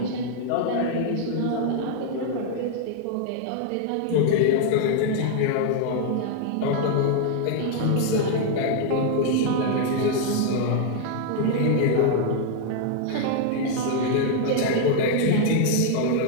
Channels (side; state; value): both; different; correlation 0.00